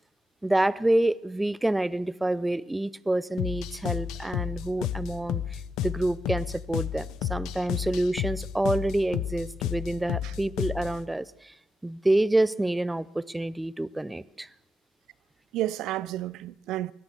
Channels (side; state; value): both; normal; correlation 0.86